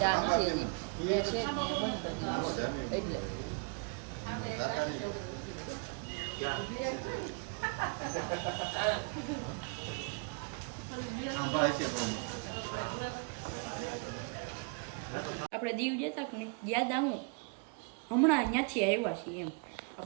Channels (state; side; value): quieter; left; 35.8 dB